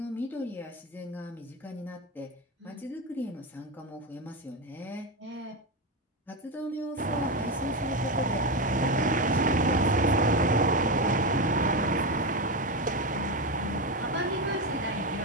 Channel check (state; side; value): normal; both; correlation 0.14